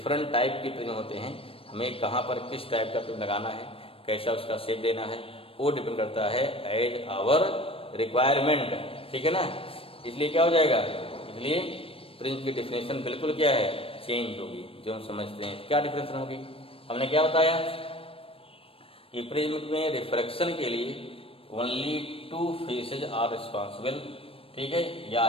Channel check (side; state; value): right; late; 0.27 ms